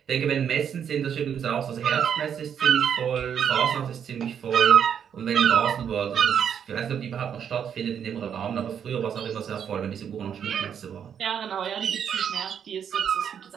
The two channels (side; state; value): left; quieter; 8.2 dB